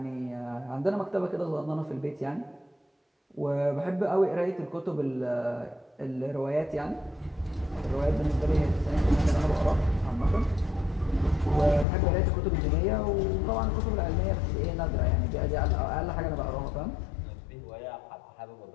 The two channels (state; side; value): drops out; right; at 11.9 s